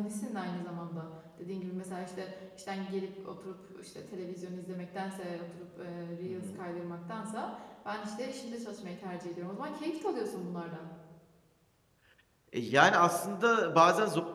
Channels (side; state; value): both; identical; correlation 1.00